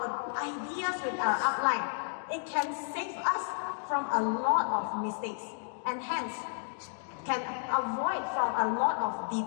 ideas with our upline, it can save us from a lot of mistakes, and hence can avoid from a lot of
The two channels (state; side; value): silent; right; digital silence